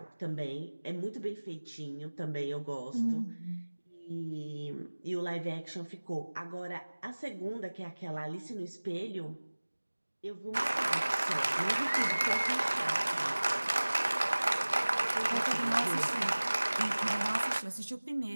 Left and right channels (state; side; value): inverted; both; correlation -1.00